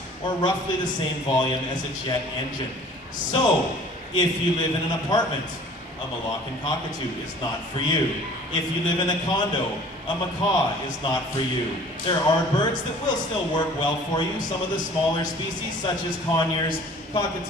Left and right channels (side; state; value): both; normal; correlation 0.50